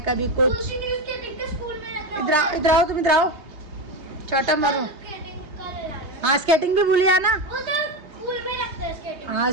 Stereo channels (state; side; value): late; left; 3.2 ms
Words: कभी कुछ। इधर आओ, इधर आओ, तुम इधर आओ, चाटा मारो। हाँ स्केटिंग भी भूलिया ना। हाँ